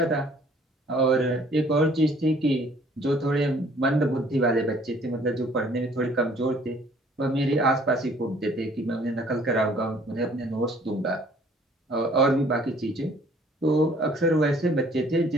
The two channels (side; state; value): both; normal; correlation 0.57